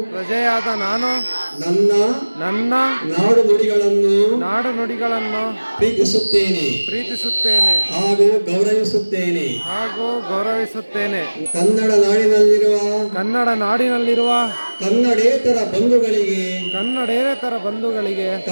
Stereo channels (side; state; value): both; inverted; correlation -1.00